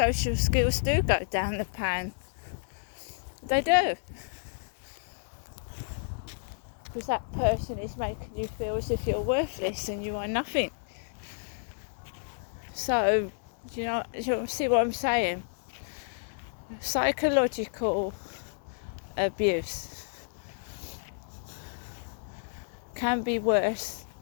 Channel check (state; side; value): silent; right; 57 dB below the other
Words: skills do go down the pan. They do. Because that person is making you feel as if you're worthless and you are nothing. So, you see what I'm saying? Psychological abuse can be worse